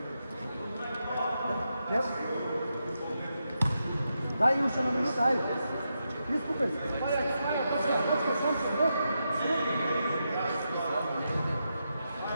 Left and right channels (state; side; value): inverted; both; correlation -0.85